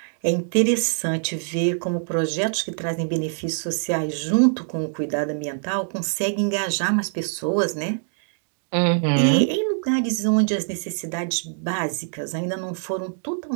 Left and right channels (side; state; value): left; silent; digital silence